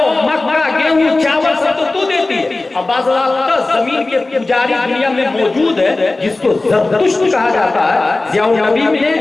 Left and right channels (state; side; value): quieter; right; 3.2 dB